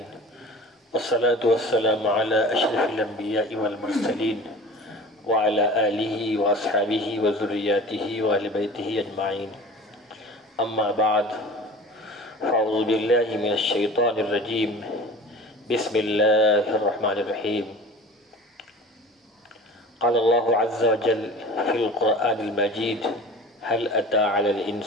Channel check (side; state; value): both; normal; correlation 0.39